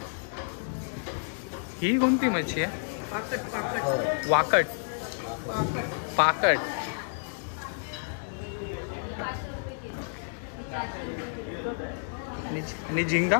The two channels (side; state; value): right; silent; digital silence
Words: ही कोणती मच्छी आहे? पाकट वाकट पाकट। आणि झिंगा